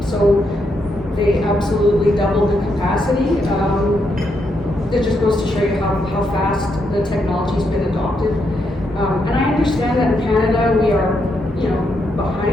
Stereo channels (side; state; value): both; normal; correlation 0.80